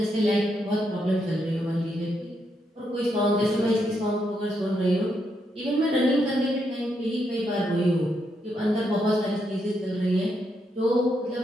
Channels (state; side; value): normal; both; correlation 0.80